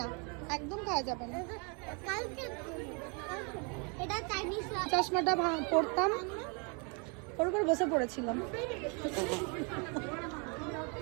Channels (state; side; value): quieter; left; 34.6 dB